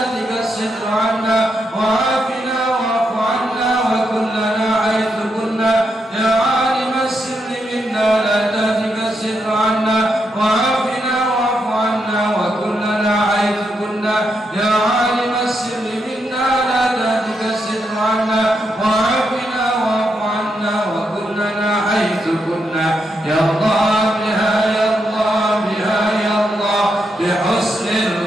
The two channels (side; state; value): both; normal; correlation 0.82